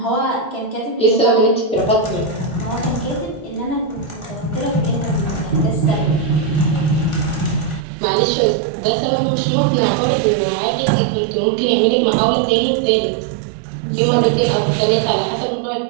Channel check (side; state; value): left; drops out; at 7.9 s